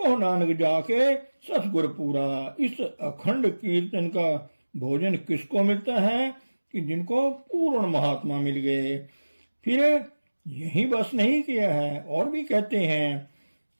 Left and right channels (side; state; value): both; inverted; correlation -1.00